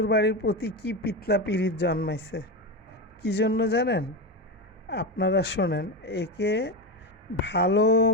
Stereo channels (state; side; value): normal; both; correlation 0.16